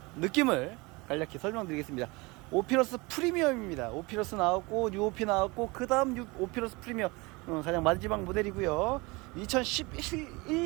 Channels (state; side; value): quieter; left; 25.2 dB